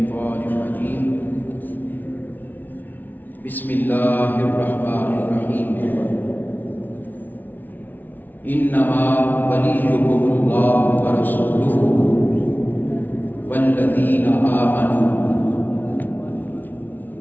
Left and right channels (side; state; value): right; late; 0.084 ms